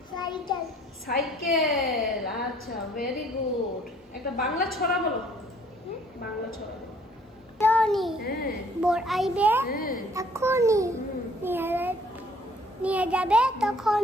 Cycle. সাইকেল। আচ্ছা ভেরি গুড। একটা বাংলা ছড়া বলো। বাংলা ছড়া। Johnny. হ্যাঁ বোর আইবে এখনই, নিয়ে যাবে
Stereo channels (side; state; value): both; normal; correlation 0.59